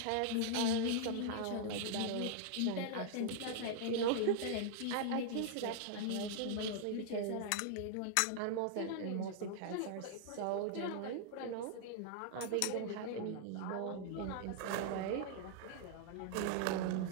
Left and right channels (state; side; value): different; both; correlation -0.01